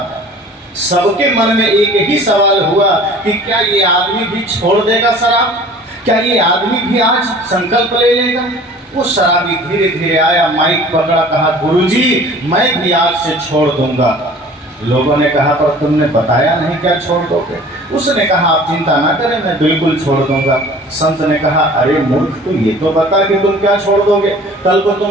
सबके मन में एक ही सवाल हुआ कि क्या ये आदमी भी छोड़ देगा शराब, क्या ये आदमी भी आज संकल्प ले लेगा। वो शराबी धीरे धीरे आया, माइक पकड़ा, कहा गुरुजी मैं भी आज से छोड़ दूंगा। लोगों ने कहा पर तुमने बताया नहीं क्या छोड़ दोगे। उसने कहा आप चिंता ना करें, मैं बिल्कुल छोड़ दूंगा। संत ने कहा अरे मूर्ख, तू ये तो बता कि तुम क्या छोड़ दोगे। कल को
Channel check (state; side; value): normal; both; correlation 0.46